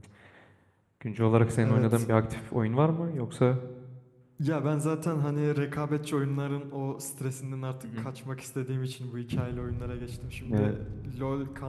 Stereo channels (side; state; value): both; identical; correlation 1.00